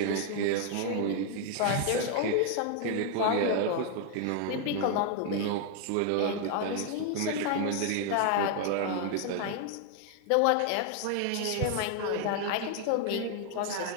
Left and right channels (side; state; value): both; different; correlation 0.00